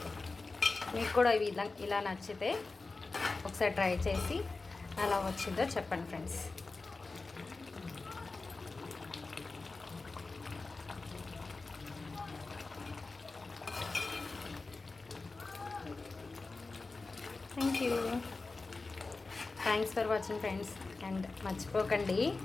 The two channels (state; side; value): quieter; right; 3.7 dB